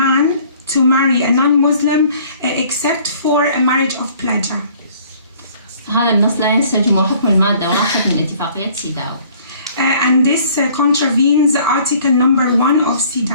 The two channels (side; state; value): both; inverted; correlation -0.55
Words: man to marry a non-Muslim except for a marriage of pleasure. هذا النص لا ينسجم حكم المادة 1 من اتفاقية سيداو. And this contravenes Article number 1 of